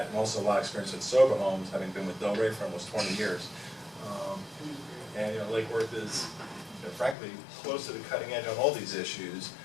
and also a lot of experience with sober homes, having been with Delray for almost 20 years. And Lake Worth is, frankly, close to the cutting edge on all these issues.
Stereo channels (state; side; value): drops out; right; at 7.2 s